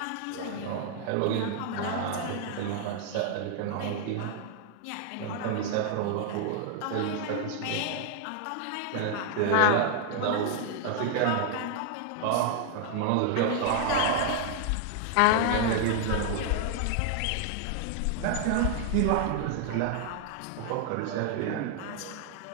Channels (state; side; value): different; both; correlation 0.00